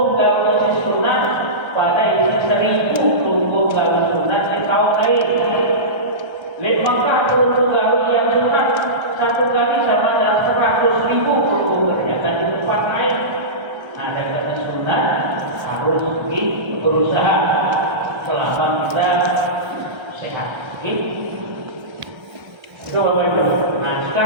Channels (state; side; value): late; left; 1.3 ms